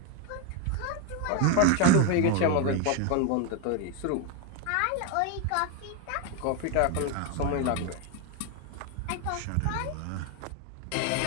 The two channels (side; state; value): both; different; correlation 0.01